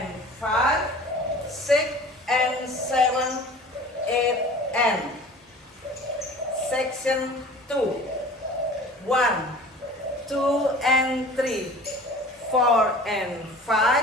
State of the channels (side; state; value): both; normal; correlation 0.43